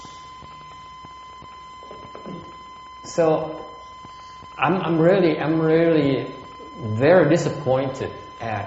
I'm really very disappointed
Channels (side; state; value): both; identical; correlation 1.00